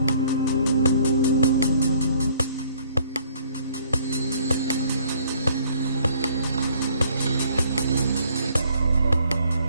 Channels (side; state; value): both; inverted; correlation -0.60